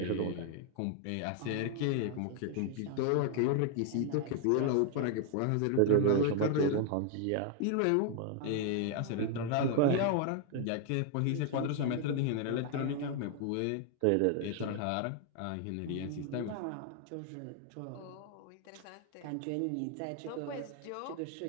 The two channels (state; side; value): different; both; correlation 0.00